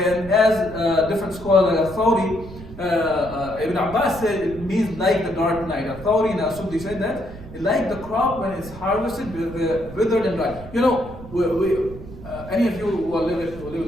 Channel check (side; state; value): right; noise; rumble, 15 dB below the sound